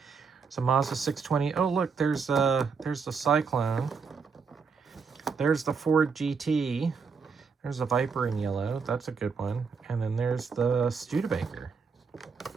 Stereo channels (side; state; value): left; quieter; 5.4 dB